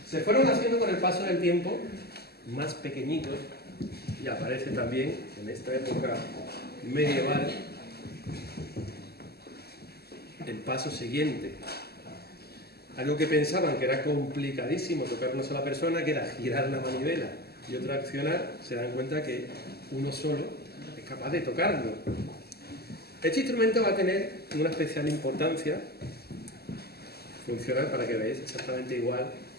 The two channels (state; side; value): late; right; 0.46 ms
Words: Se fueron haciendo con el paso del tiempo más pequeñitos y aparece también en esta época medieval el paso siguiente. Algo que pensaban que era complicadísimo tocar una sola persona, que era girar la manivela y otra accionar, se dan cuenta que uno solo es capaz de tocarlo. Este instrumento va a tener una especial importancia funcional, para que veáis, exactamente igual